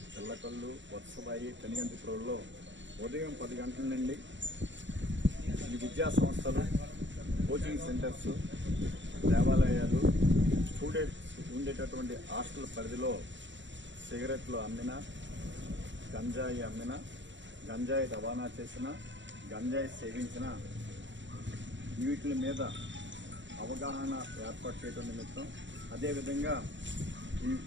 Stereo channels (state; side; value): late; left; 0.54 ms